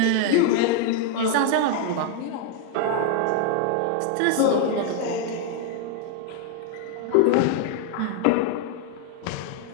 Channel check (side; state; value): both; different; correlation 0.00